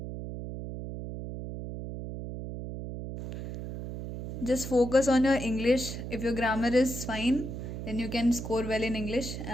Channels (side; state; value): right; noise; hum, 7 dB below the sound